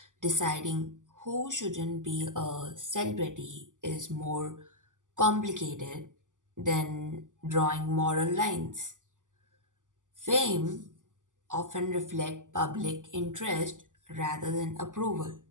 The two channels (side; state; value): left; late; 0.87 ms